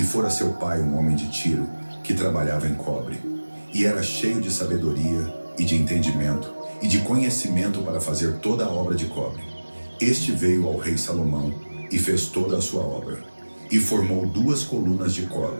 fora seu pai um homem de Tiro, que trabalhava em cobre. E era cheio de sabedoria, e de entendimento, e de conhecimento para fazer toda a obra de cobre. Este veio ao rei Salomão, e fez toda a sua obra, e formou 2 colunas de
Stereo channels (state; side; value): inverted; both; correlation -1.00